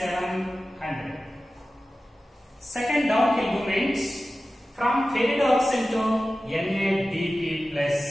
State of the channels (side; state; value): both; normal; correlation 0.95